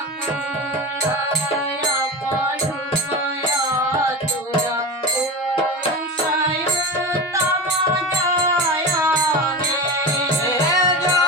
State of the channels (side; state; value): both; normal; correlation 0.25